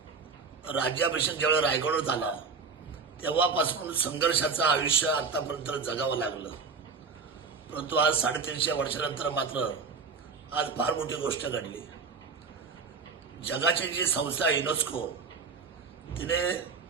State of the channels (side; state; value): left; quieter; 5.0 dB